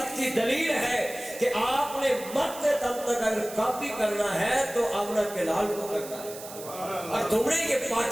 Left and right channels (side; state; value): right; noise; hiss, 14 dB below the sound